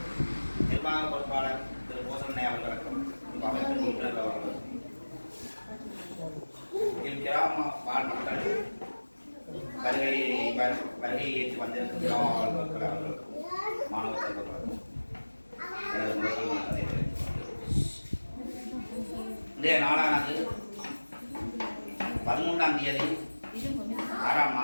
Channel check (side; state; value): both; inverted; correlation -1.00